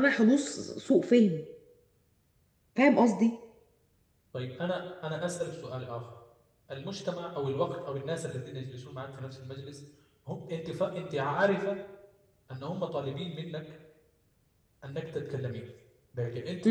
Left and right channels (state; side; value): identical; both; correlation 1.00